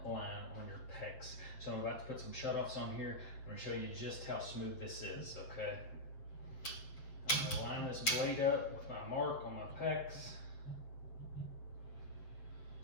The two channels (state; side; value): late; right; 7.7 ms